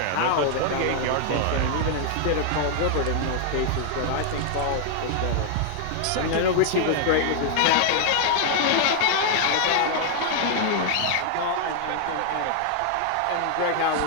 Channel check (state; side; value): different; both; correlation 0.00